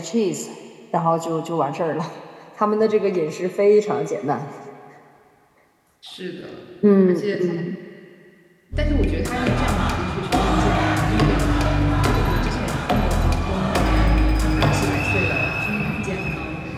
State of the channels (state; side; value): identical; both; correlation 1.00